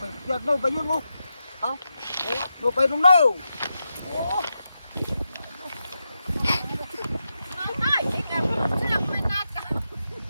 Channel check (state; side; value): inverted; both; correlation -0.88